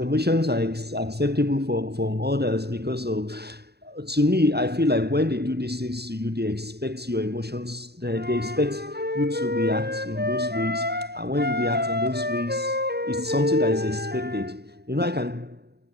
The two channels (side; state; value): left; late; 0.47 ms